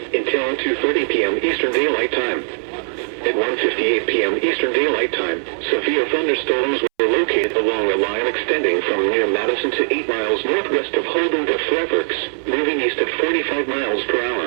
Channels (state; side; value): silent; left; 66 dB below the other